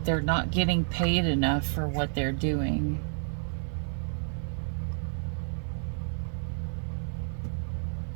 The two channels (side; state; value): left; silent; 58 dB below the other